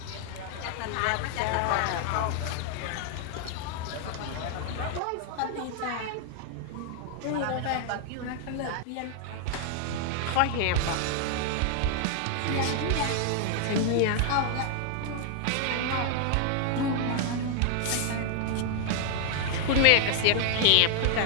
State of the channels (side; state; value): both; different; correlation 0.00